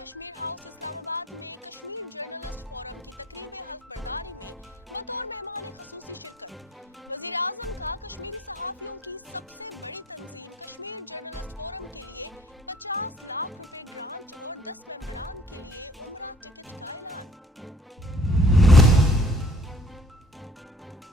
हाउस इस्लामाबाद में कश्मीर जर्नलिस्ट फोरम की तकरीब हल्फ बर्दारी में बतौर मेहमान खसूसी शिरकत। वजीर आजम का कश्मीरी सहाफियों की सबसे बड़ी तंजीम कश्मीर जर्नलिस्ट फोरम के लिए 50 लाख रुपए ग्रांट और 10 मेंबरान के लिए उम्रा टिकट का ऐलान।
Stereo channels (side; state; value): both; normal; correlation 0.54